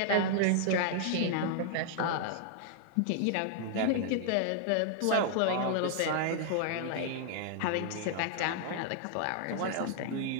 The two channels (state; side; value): different; both; correlation 0.00